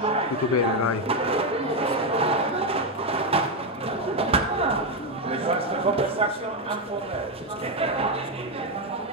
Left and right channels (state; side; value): normal; both; correlation 0.06